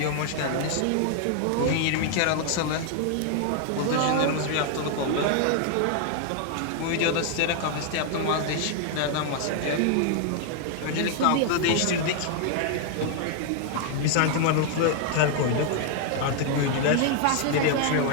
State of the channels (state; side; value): different; both; correlation 0.00